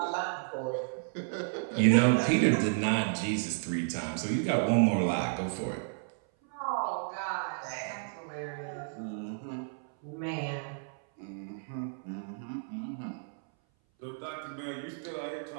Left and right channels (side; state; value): left; silent; 56 dB below the other